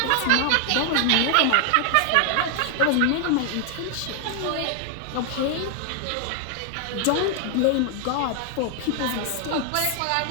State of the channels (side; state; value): both; different; correlation 0.00